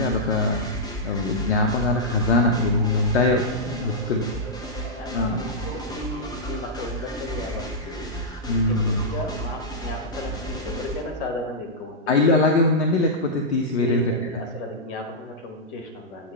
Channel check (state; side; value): normal; both; correlation -0.09